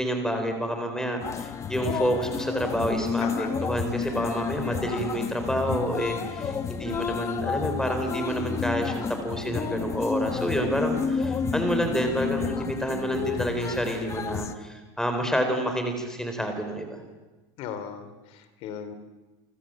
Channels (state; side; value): normal; both; correlation 0.65